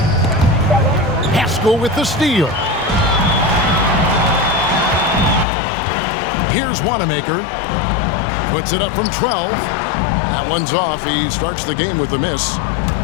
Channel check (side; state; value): right; drops out; at 5.5 s